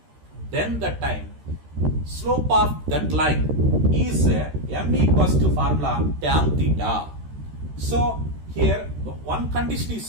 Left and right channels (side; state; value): left; late; 13 ms